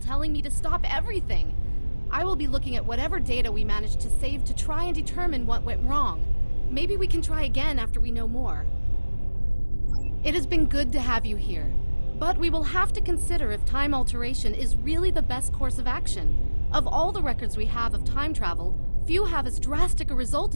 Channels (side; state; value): both; inverted; correlation -1.00